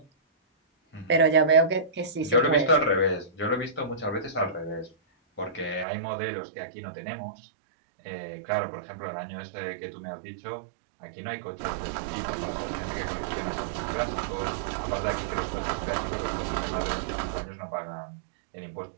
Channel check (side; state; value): left; drops out; at 5.9 s